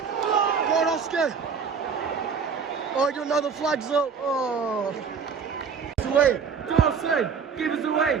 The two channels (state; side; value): quieter; left; 6.1 dB